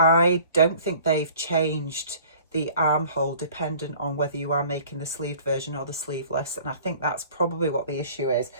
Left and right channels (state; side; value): inverted; both; correlation -0.49